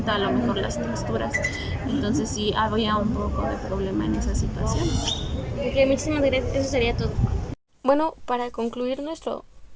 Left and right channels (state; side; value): identical; both; correlation 1.00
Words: a lo mejor las texturas. Entonces sí había un poco de problema en esas situaciones. Ok, muchísimas gracias, eso sería todo. Bueno, para concluir